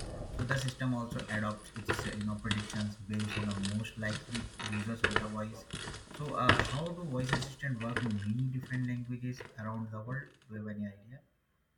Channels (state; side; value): identical; both; correlation 1.00